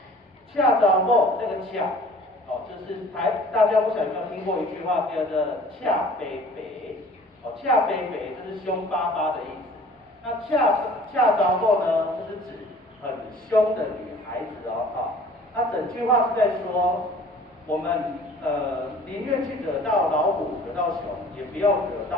恰查某这个恰。哦，就是大家不晓得有没有听过一句话叫做“恰北北”，哦，恰北北就是凶巴巴的意思。那恰查某呢，就是指很凶的女孩子哦，哈。那整句话是在说，我们宁愿去惹到老虎、惹到熊，也不要惹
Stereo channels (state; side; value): normal; both; correlation 0.49